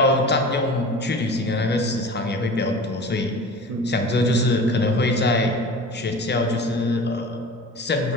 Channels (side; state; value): both; normal; correlation 0.37